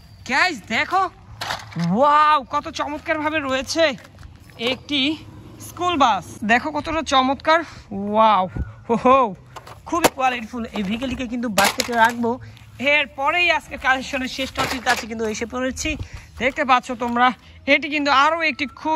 গাইস দেখো, ওয়াও, কত চমৎকারভাবে রয়েছে একটি স্কুল বাস, দেখো কতটা চমৎকার, ওয়াও, হো, খুবই কোয়ালিটিফুল। এই ভেহিকেলটিকে কিন্তু বাস্কেটে রাখবো। এরপরেই আজকে কালেকশনের শেষ টপির কাছে কিন্তু এসে পড়েছি। দেখতে পাচ্ছ তোমরা, এটি কিন্তু আরও একটি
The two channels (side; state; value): both; identical; correlation 1.00